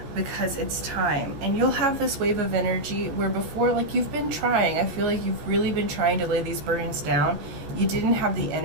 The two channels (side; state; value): left; late; 14 ms